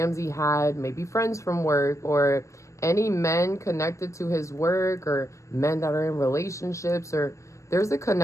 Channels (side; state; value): right; late; 0.15 ms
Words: had maybe friends from work, or any men connected to his work, or men that are in relationships, or there's a